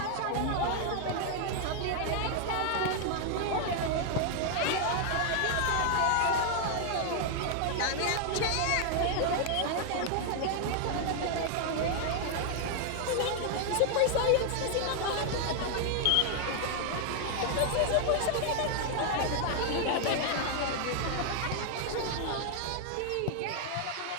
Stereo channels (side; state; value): both; different; correlation 0.00